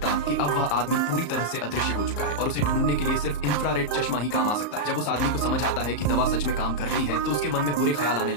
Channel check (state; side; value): late; right; 34 ms